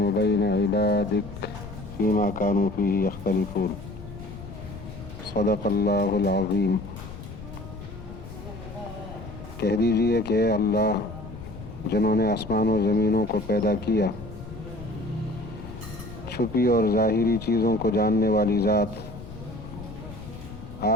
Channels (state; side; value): noise; left; rumble, 13 dB below the sound